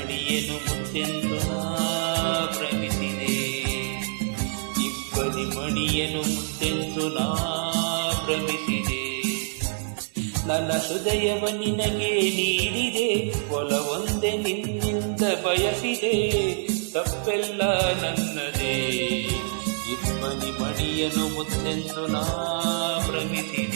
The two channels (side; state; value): left; silent; 58 dB below the other